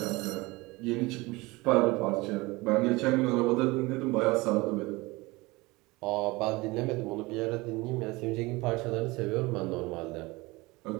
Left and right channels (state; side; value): quieter; left; 22.7 dB